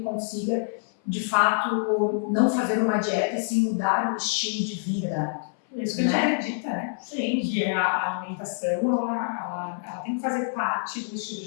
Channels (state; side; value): silent; right; 58 dB below the other